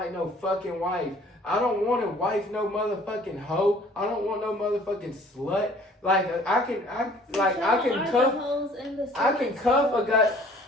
no fucking wife. I don't want to wife no motherfucking hoe. I don't want no motherfucking slut. Like I can cuff a guy.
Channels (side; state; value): both; normal; correlation 0.54